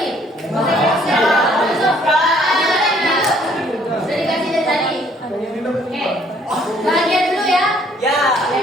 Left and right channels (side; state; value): both; normal; correlation 0.62